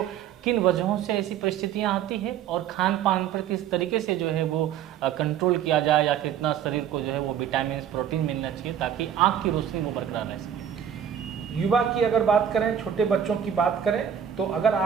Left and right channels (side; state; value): left; quieter; 9.1 dB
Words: किन वजहों से ऐसी परिस्थितियां आती है और खान पान पर किस तरीके से जो है वो कंट्रोल किया जाए, या कितना शरीर को जो है वो विटामिन प्रोटीन मिलना चाहिए ताकि आंख की रोशनी वो बरकरार रह सके? युवा की अगर बात करें, छोटे बच्चों की बात करें, तो अगर